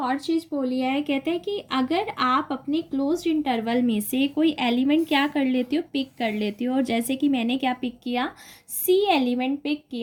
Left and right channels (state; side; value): identical; both; correlation 1.00